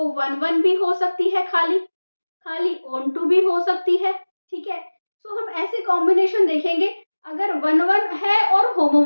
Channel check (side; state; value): both; inverted; correlation -1.00